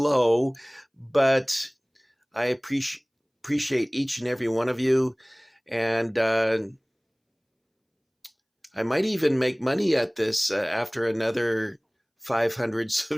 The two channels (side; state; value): both; identical; correlation 1.00